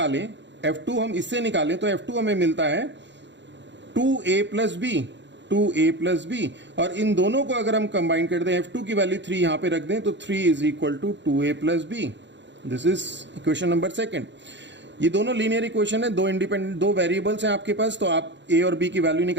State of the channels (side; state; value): left; late; 0.52 ms